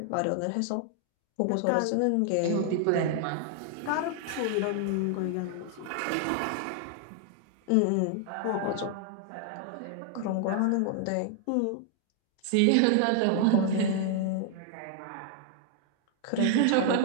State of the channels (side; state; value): both; different; correlation 0.00